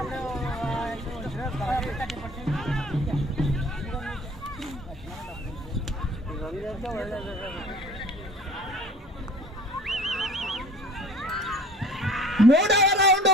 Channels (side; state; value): both; normal; correlation 0.48